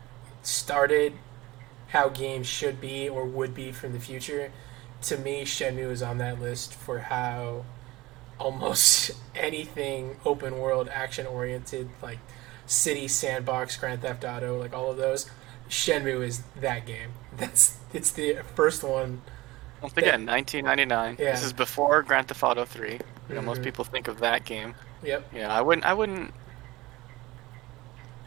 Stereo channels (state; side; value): quieter; left; 19.8 dB